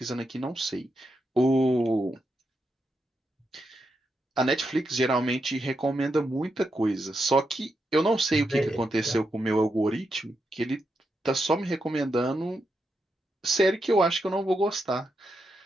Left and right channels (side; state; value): both; normal; correlation 0.84